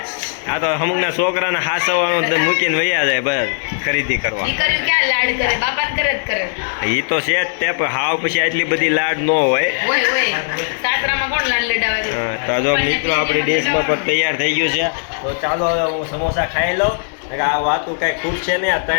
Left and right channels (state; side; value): silent; right; 66 dB below the other